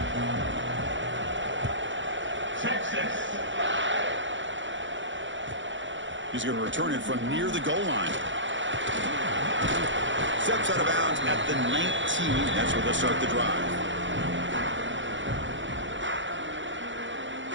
He's going to return it from near the goal line. Steps out of bounds at the 19. That's where they'll start the drive.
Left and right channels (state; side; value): late; left; 0.55 ms